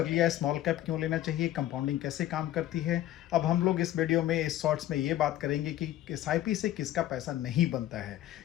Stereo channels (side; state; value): right; quieter; 13.2 dB